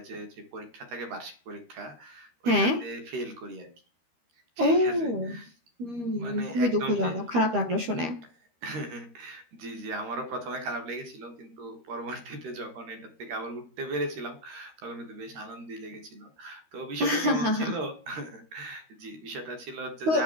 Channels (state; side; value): late; left; 13 ms